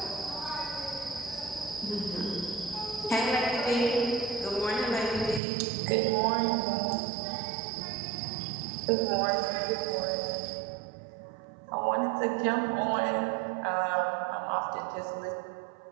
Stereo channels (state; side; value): drops out; left; at 5.4 s